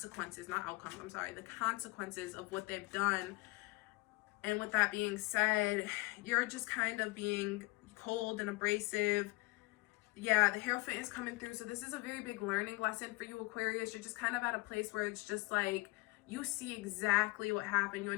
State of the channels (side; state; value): right; quieter; 25.0 dB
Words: not outcomes, I'm sorry. The consequences of what they've done. And with that being said, you're just kind of being cold and abrasive. Yeah, the Hierophant is coming through. So this is a very big learning lesson for you, Aquarius. You're just kind of at a place where it's just like, you see exactly what happened. You